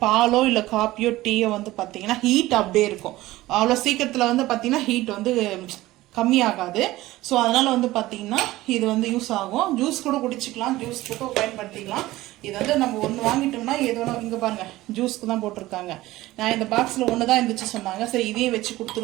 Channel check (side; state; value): left; quieter; 17.3 dB